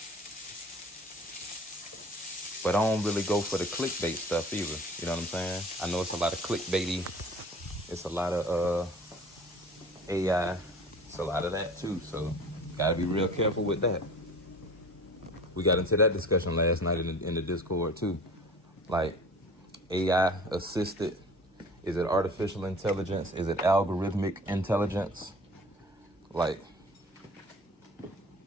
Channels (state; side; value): normal; both; correlation 0.43